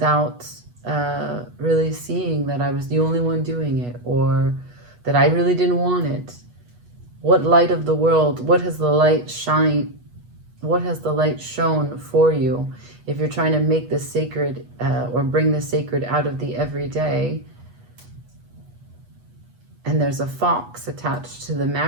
really seeing that I was the only one doing it, or that I really didn't want it? What light of the world, what has the light shown for you? If you're trying to make the sacred or bring the sacred out of the everyday, and there's a fox attached to the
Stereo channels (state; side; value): late; left; 8.2 ms